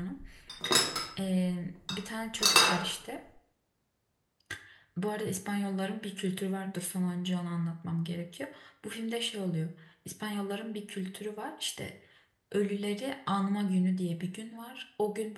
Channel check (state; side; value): identical; both; correlation 1.00